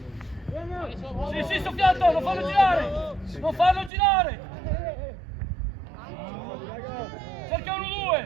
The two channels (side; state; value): left; drops out; at 3.9 s